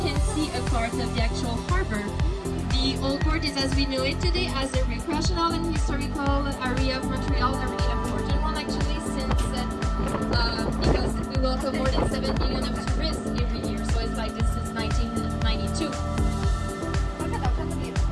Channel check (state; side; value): identical; both; correlation 1.00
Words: can see a part of the actual harbor. The Old Port is as we know it today as a recreational and historical area of Montreal, a really important one actually since because we welcome more than 7 million of tourists every year, so it's like this is 1992.